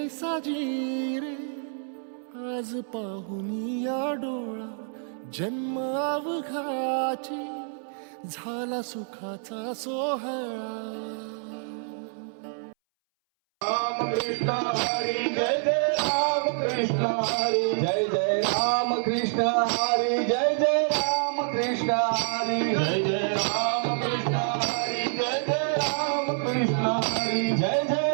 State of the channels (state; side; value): silent; left; 60 dB below the other